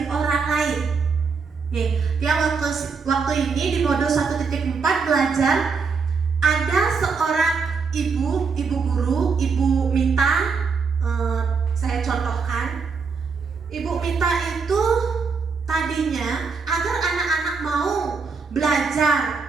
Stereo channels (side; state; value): left; quieter; 5.1 dB